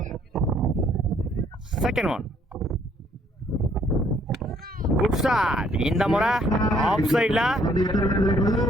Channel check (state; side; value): normal; both; correlation 0.65